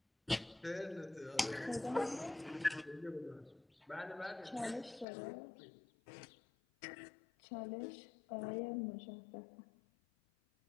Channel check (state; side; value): drops out; right; at 5.1 s